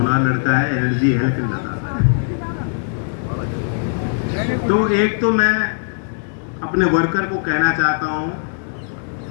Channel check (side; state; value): right; silent; 66 dB below the other